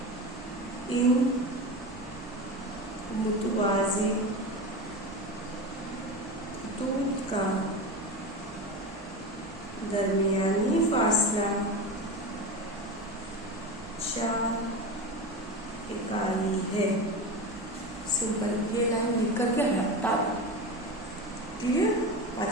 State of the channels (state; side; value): normal; both; correlation 0.24